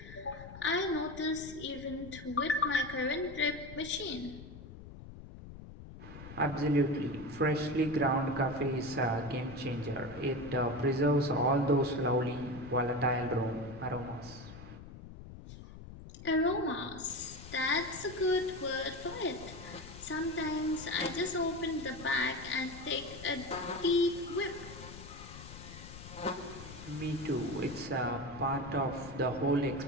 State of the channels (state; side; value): noise; left; rumble, 14 dB below the sound